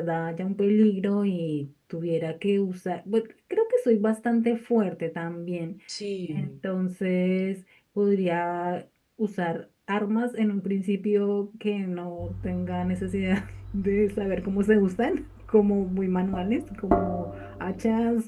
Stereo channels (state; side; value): identical; both; correlation 1.00